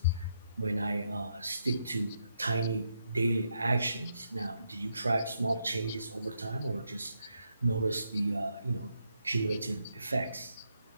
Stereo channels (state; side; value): inverted; both; correlation -0.80